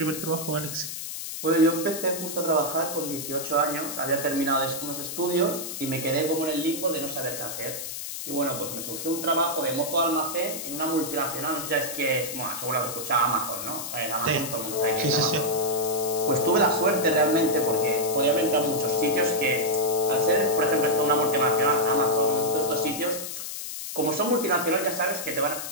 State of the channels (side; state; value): left; noise; hiss, 7 dB below the sound